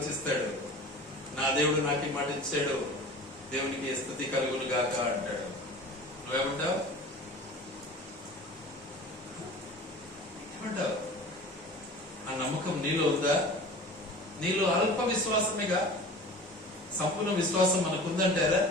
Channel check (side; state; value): both; normal; correlation 0.39